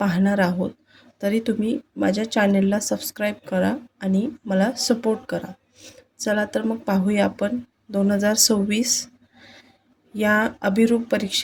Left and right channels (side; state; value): both; identical; correlation 1.00